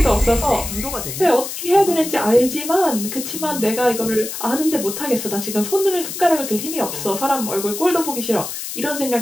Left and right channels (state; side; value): noise; left; hiss, 7 dB below the sound